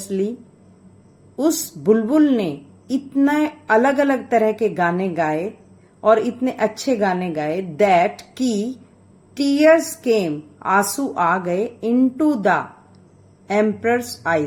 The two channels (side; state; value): both; identical; correlation 1.00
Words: उस बुलबुल ने इतने अलग अलग तरह के गाने गाए और इतने अच्छे गाने गाए, दैट की टीयर्स केम, आंसू आ गए, इनटू द एम्परर्स